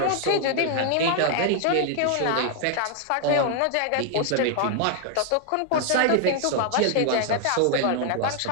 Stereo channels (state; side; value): different; both; correlation 0.00